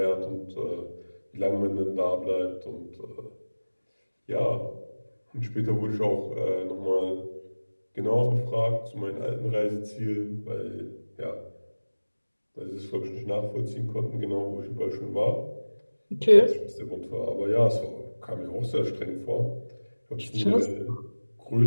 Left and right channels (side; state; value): both; inverted; correlation -1.00